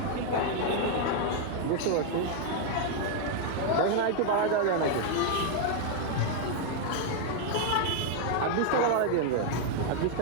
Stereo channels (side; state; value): both; different; correlation 0.00